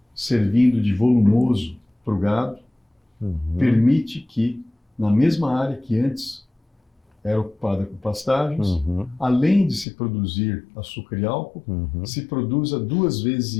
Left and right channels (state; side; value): drops out; right; at 9.9 s